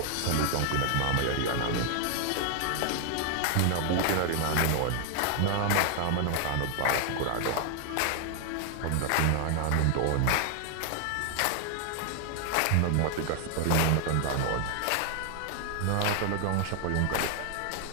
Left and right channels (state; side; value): different; both; correlation 0.00